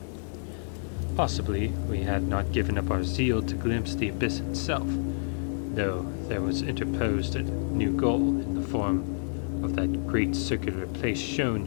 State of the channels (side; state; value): right; silent; 59 dB below the other